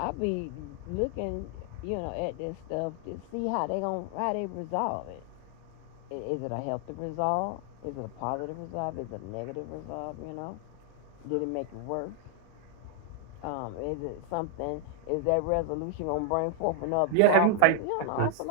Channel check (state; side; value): different; both; correlation 0.00